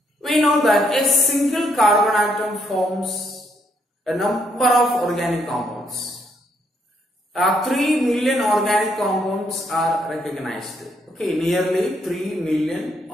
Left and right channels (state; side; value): normal; both; correlation 0.73